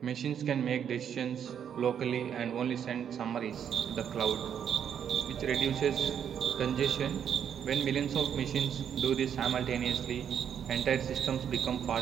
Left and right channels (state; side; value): quieter; left; 8.5 dB